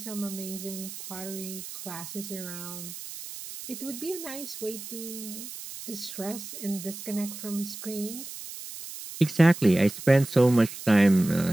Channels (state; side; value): noise; right; hiss, 11 dB below the sound